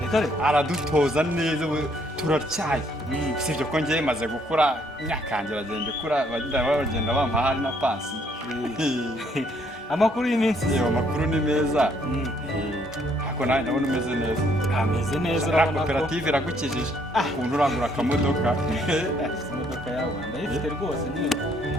aradutoza neza turacyaye sibyo ko ngiye maze gukura imyaka yanjye bagenda ikura bagenda bampa hari na pasi amakuru y'iminsi amakuru ni meza ariko nawe ndabona umeze neza ameze neza urabona koperative iragukijije ukuntu urangura akamodoka imodoka yawe ndayifite rwose nyine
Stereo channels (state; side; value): normal; both; correlation 0.67